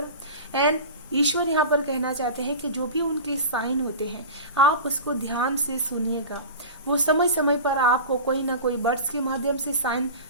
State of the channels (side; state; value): both; inverted; correlation -0.31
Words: एंड ईश्वर यहाँ पर कहना चाहते हैं कि जो भी उनके साइन होते हैं आप उसको ध्यान से सुनिएगा। वो समय समय पर आपको कोई ना कोई बर्ड्स के माध्यम से साइन